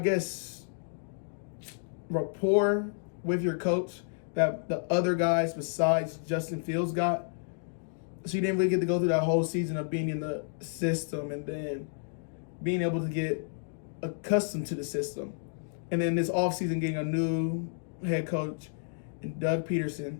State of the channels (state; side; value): silent; right; digital silence